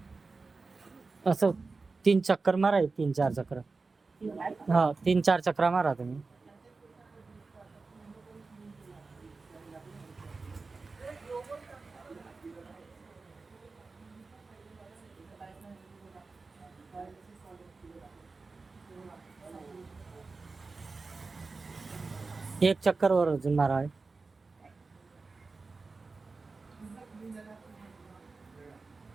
असं 3 चक्कर मारा, 3-4 चक्र. हा, 3-4 चक्रा मारा तुम्ही. एक चक्कर वर अजून मारा.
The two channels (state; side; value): quieter; left; 4.0 dB